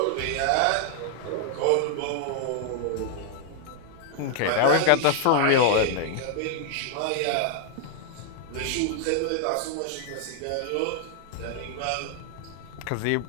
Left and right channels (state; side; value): different; both; correlation 0.00